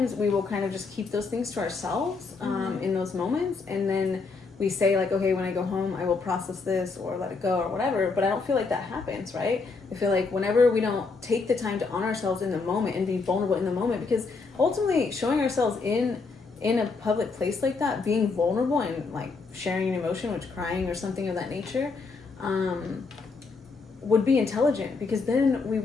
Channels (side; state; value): right; quieter; 4.4 dB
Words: we will kind of just keep those things to ourselves in those moments, and then we say like, okay, when I go home I will process this or let it go or whatever. But I don't feel like that happens, right? I feel like whenever we don't take the time to honor ourselves in the moment and be vulnerable in the moment, because ultimately showing ourselves in a public place like that, being vulnerable and like sharing an emotion, which crying or something of that nature, would be intelligent, because then we